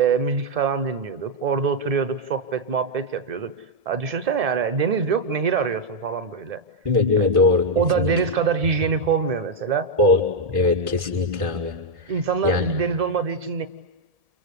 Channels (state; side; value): late; left; 1.7 ms